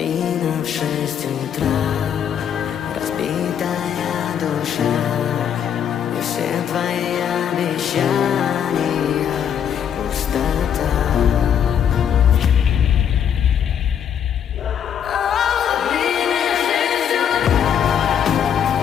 в 6 утра, разбитая душа, и все твои обещания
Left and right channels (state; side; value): quieter; right; 8.7 dB